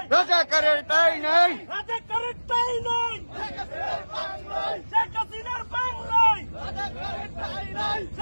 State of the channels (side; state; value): both; inverted; correlation -1.00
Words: রাজাকারের ঠাঁই নাই, রাজাকারের ঠাঁই নাই, শেখ হাসিনার বাংলায় রাজাকারের ঠাঁই নাই,